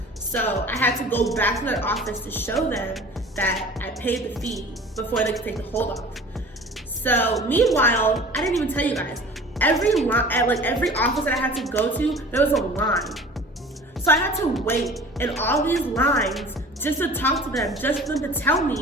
So I had to go back to their office to show them that I paid the fee before they could take the hold off. So meanwhile, I didn't even tell you guys, every office that I had to go to, there was a line. So I had to wait in all these lines just to talk to them, just for them to tell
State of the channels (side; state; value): both; normal; correlation 0.43